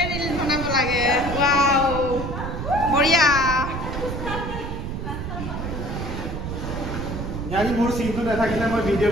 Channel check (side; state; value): right; noise; rumble, 5 dB below the sound